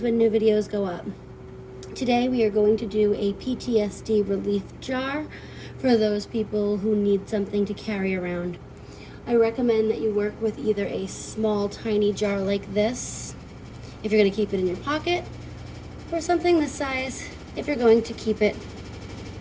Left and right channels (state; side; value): identical; both; correlation 1.00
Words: when new videos go up. Today we are going to do a PTSD relief jar for those people who need something to carry around. I recommend that you work with either a small tiny jar like this if you're going to keep it in your pocket, or something this size if you're going to keep it